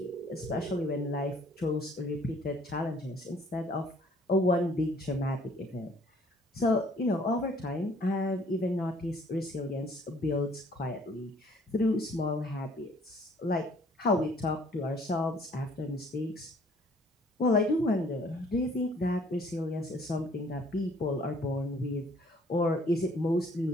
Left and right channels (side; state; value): both; normal; correlation 0.59